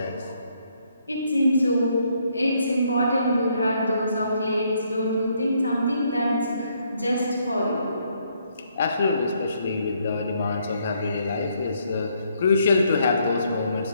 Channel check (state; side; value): inverted; both; correlation -0.72